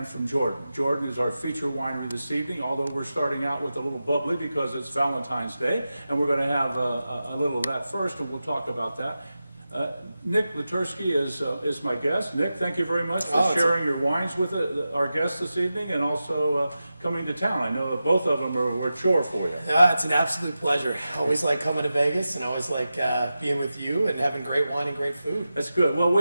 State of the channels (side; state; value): both; inverted; correlation -0.93